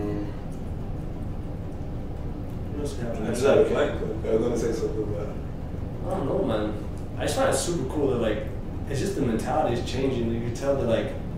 What else happened? I just had a flight. I was going to say something about it. I don't know, man. I just find it super cool that, like, it's just the mentality is changing. You can tell that, like,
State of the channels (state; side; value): identical; both; correlation 1.00